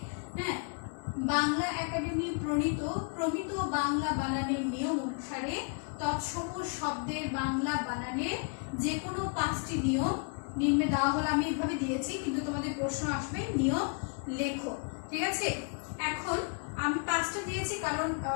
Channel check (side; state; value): right; quieter; 38.7 dB